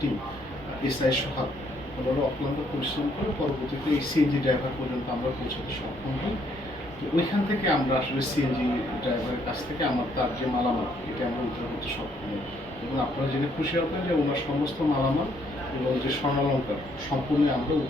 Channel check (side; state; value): both; normal; correlation 0.69